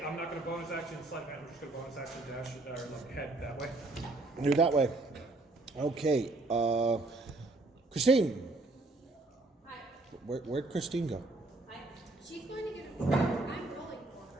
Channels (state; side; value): quieter; left; 3.0 dB